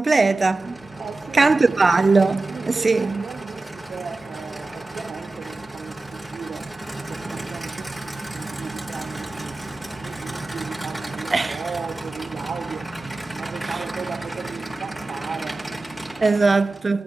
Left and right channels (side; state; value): left; quieter; 3.3 dB